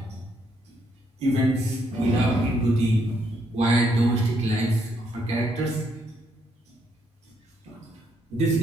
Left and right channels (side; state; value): both; normal; correlation 0.74